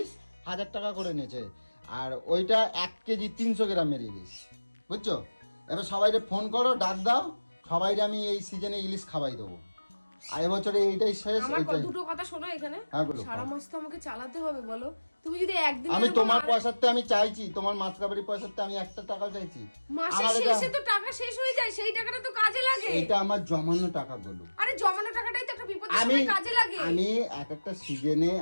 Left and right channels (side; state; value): both; inverted; correlation -1.00